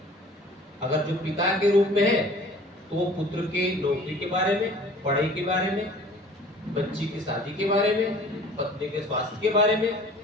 अगर जो पिता के रूप में है तो वो पुत्र के नौकरी के बारे में, पढ़ाई के बारे में, बच्ची की शादी के बारे में, पत्नी के स्वास्थ्य के बारे में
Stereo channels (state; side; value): normal; both; correlation 0.48